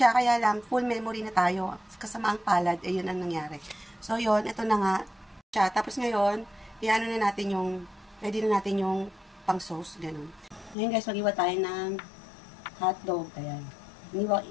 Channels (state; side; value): drops out; right; at 10.8 s